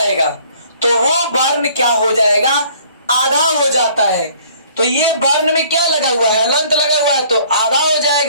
तो वो वर्ण क्या हो जाएगा, आधा हो जाता है। तो ये वर्ण में क्या लगा हुआ है, हलंत लगा हुआ है, तो आधा हो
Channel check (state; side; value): inverted; both; correlation -0.56